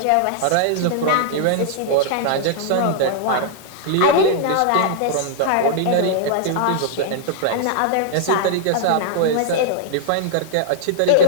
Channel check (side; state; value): both; different; correlation -0.01